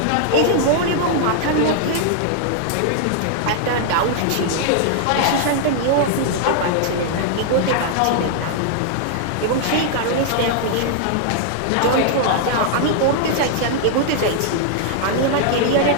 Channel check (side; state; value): both; different; correlation -0.01